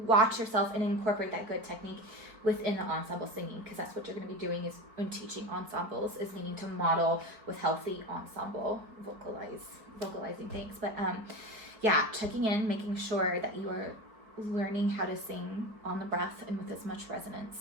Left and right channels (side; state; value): left; late; 4.5 ms